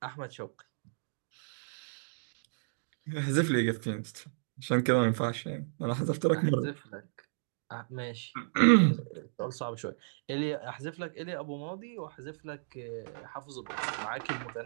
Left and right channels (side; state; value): left; silent; digital silence